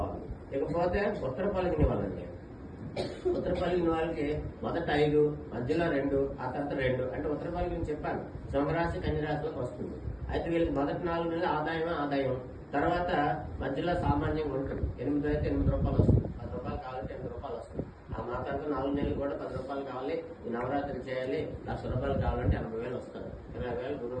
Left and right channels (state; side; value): identical; both; correlation 1.00